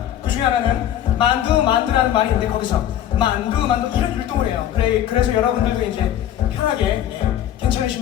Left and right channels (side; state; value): right; quieter; 11.3 dB